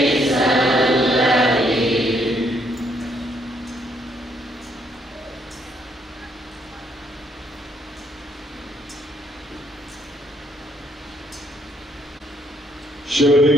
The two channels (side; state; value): both; normal; correlation 0.71